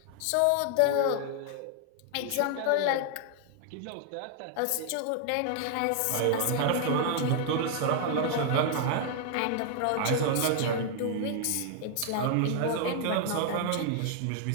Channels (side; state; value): both; different; correlation 0.00